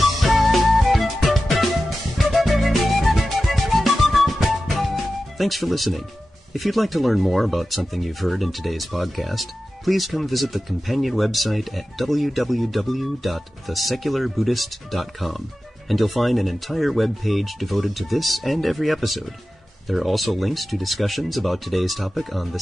Thanks for listening. If you'd like to learn more about something you've heard in today's podcast, please come visit the companion website at www.thesecularbuddhist.com, and you'll find an entire web page devoted to this and every episode. There are also links to discussions about today's topic on the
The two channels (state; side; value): normal; both; correlation 0.94